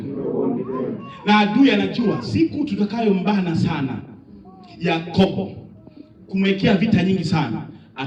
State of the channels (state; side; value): identical; both; correlation 1.00